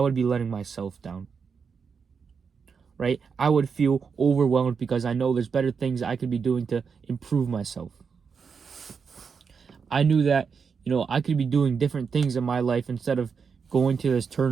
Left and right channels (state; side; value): quieter; left; 5.9 dB